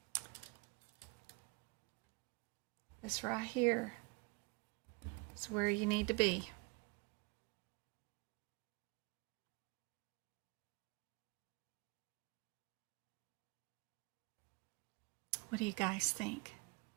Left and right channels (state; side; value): quieter; left; 28.4 dB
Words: This right here is where you need to be. What do you guys think?